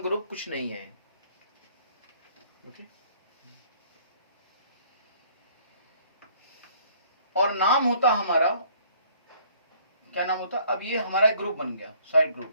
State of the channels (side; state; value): both; inverted; correlation -0.59